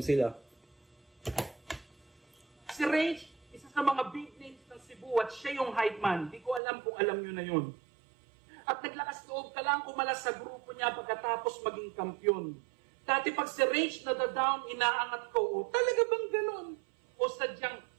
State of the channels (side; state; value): left; drops out; at 6.6 s